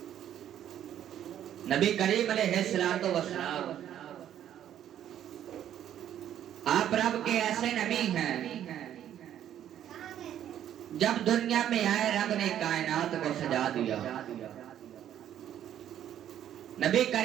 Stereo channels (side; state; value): left; quieter; 10.8 dB